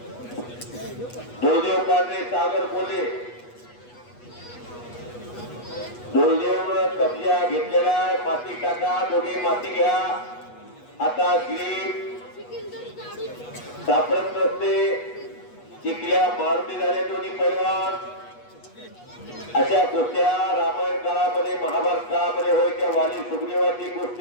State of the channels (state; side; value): late; right; 8.2 ms